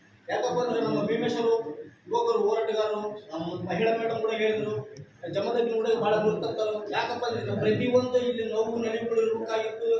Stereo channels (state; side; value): identical; both; correlation 1.00